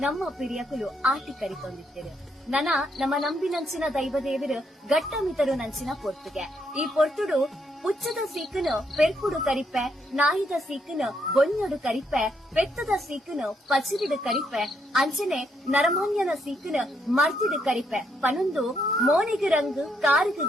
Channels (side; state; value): both; normal; correlation 0.75